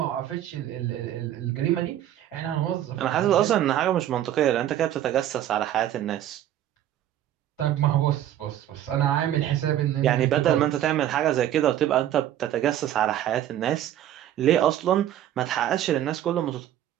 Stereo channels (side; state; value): left; quieter; 11.8 dB